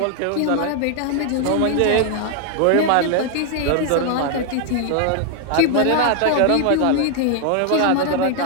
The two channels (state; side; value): different; both; correlation 0.00